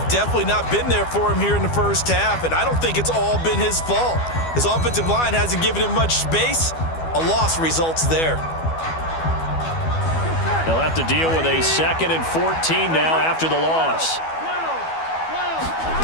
definitely not been there for him here in the 1st half, and I don't think it's all been his fault. His offensive line hasn't given him much space. A loss results there. They'll have to deal with a 2nd and 14 now after the loss.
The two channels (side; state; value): right; late; 12 ms